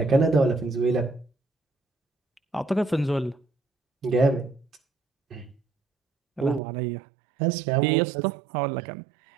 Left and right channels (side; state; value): left; drops out; at 6.6 s